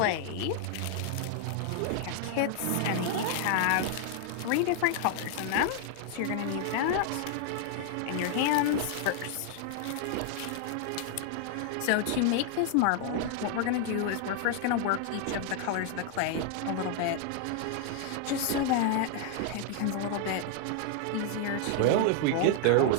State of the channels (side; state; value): both; different; correlation 0.00